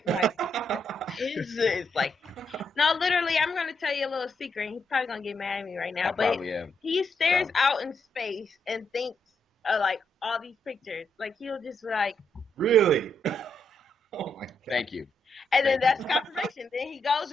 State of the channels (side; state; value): both; normal; correlation 0.79